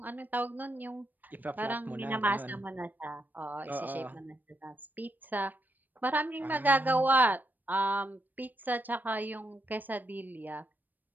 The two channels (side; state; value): left; late; 0.088 ms